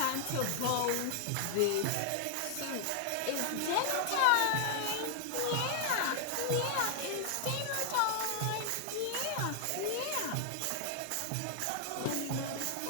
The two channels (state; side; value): different; both; correlation 0.00